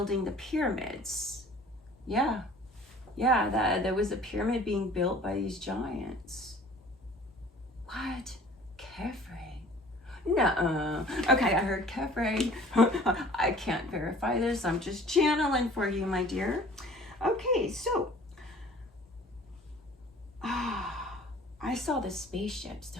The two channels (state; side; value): normal; both; correlation 0.49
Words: the pyramids. Yeah. Yeah, that there was a pyramid being built by these giants. What? Kefre? Nuh-uh. Okay, I heard Kefre. I can't verify this. I'm just channeling for you, my dear. Okay, so I saw the spaceships